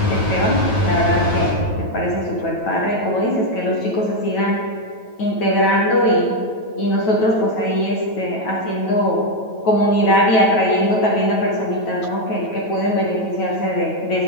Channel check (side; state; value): right; late; 9.2 ms